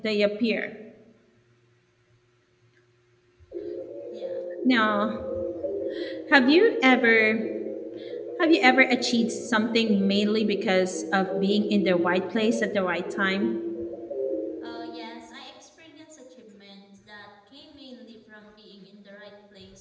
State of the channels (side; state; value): both; identical; correlation 1.00